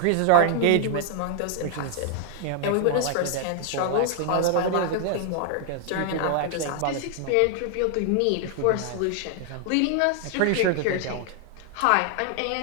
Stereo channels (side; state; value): both; different; correlation 0.00